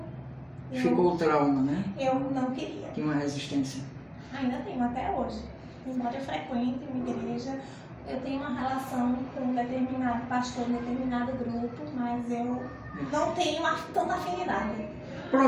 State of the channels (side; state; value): both; identical; correlation 1.00